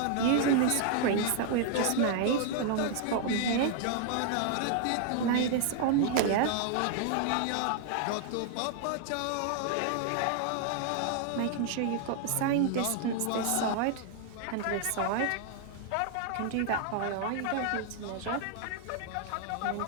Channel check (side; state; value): both; different; correlation 0.00